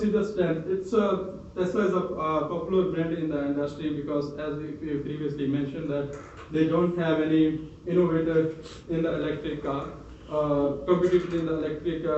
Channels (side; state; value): both; identical; correlation 1.00